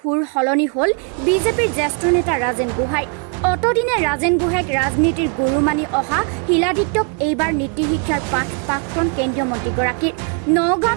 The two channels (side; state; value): left; quieter; 35.7 dB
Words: সলনি হ'ল বিজেপিৰ জ্যেষ্ঠ নেতা ৰাজেন গোহাঁই। অতদিনে ৰাজেন গোহাঁইক ৰাজনীতিৰ গুৰু মানি অহা শিলাদিত্যক এইবাৰ নীতি শিক্ষাৰ পাঠ প্ৰাক্তন কেন্দ্ৰীয় মন্ত্ৰীগৰাকীৰ।